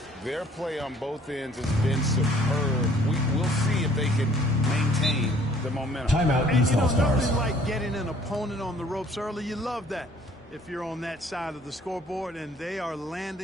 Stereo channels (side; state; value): both; normal; correlation 0.57